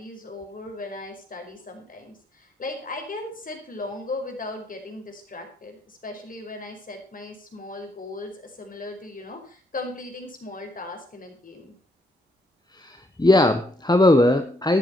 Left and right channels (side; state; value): both; normal; correlation 0.73